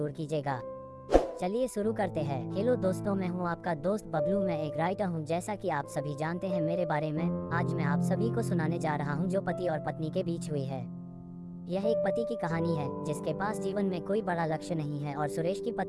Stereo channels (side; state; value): both; identical; correlation 1.00